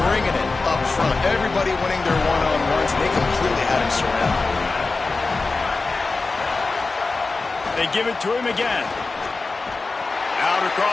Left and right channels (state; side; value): quieter; right; 3.8 dB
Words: bringing it up front. Everybody winning their one-on-ones, and they completely had him surrounded. They give it to him again. Out